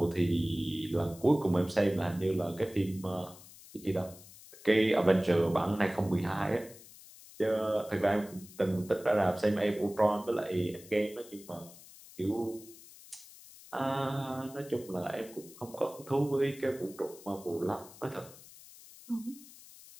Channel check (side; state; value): left; noise; hiss, 20 dB below the sound